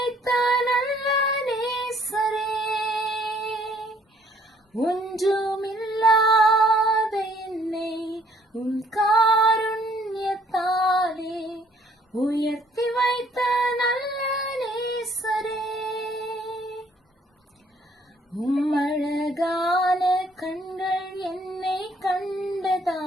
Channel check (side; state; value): both; normal; correlation 0.62